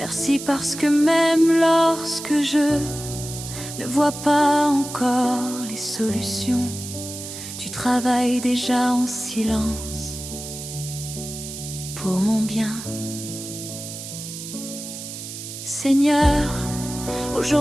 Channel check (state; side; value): noise; right; hiss, 10 dB below the sound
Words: parce que même lorsque je ne vois pas encore les solutions, tu travailles déjà en silence pour mon bien. Seigneur,